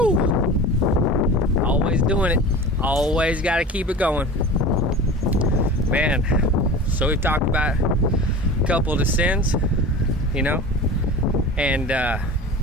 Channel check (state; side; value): normal; both; correlation 0.34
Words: Always doing it. Always got to keep it going. Man, so we've talked about a couple of the sins, you know, and